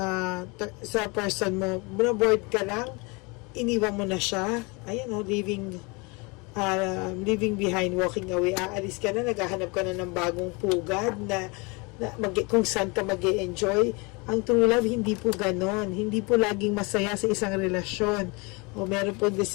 person mo, bored ka lang, iniwan mo na siya, ayan o, leaving behind, walking away, aalis ka na, naghahanap ka na ng bagong pugad na kung saan ka mag-enjoy. Ang true love, hindi po ganon, hindi po laging masaya sa isang relasyon, o meron po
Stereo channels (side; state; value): right; quieter; 28.5 dB